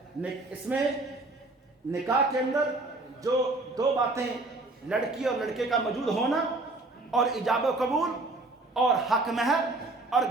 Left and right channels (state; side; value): quieter; left; 3.0 dB